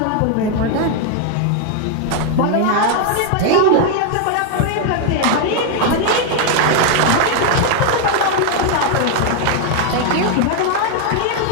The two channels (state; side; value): different; both; correlation 0.00